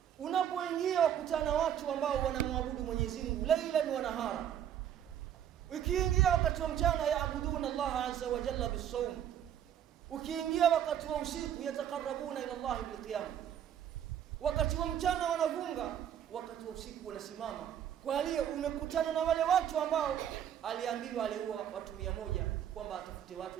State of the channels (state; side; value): quieter; left; 9.9 dB